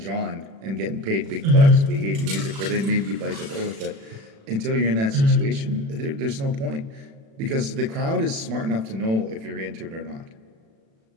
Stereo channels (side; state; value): left; late; 36 ms